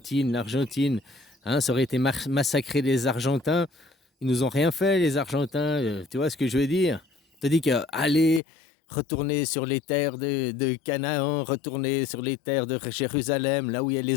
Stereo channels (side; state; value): right; drops out; at 8.4 s